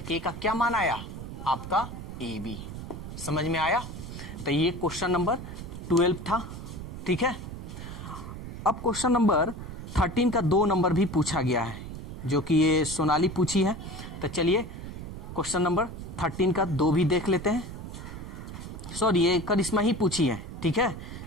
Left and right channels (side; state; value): right; noise; rumble, 9 dB below the sound